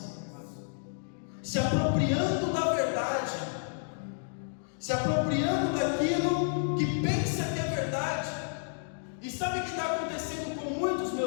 Se apropriando da verdade, se apropriando daquilo que pensa que é verdade. E sabe o que está acontecendo com muitos,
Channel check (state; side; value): silent; right; digital silence